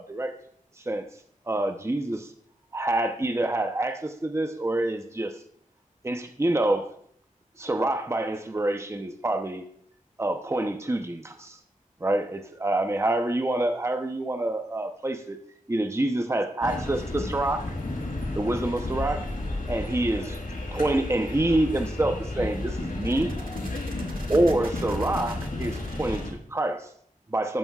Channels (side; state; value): both; normal; correlation 0.85